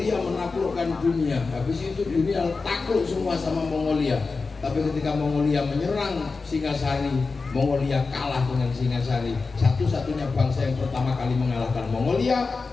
menaklukkan dunia. Habis itu dunia takluk semua sama Mongolia. Tapi ketika Mongolia menyerang Singasari, Mongolia kalah dengan Singasari. Satu-satunya bangsa yang pertama kali mengalahkan Mongolia,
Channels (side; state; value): right; quieter; 4.2 dB